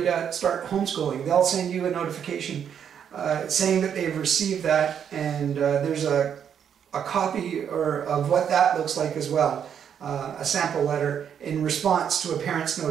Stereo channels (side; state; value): left; quieter; 8.3 dB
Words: to start homeschooling. They'll send you a notification saying that they've received that, and there's a copy of what that looks like as well. a sample letter in response to a parent's